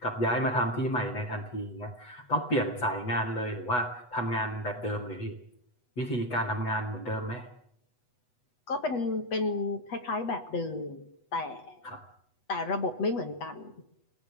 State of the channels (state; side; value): late; right; 8.1 ms